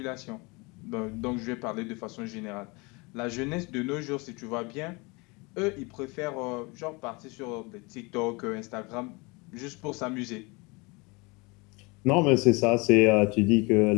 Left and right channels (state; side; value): quieter; right; 27.2 dB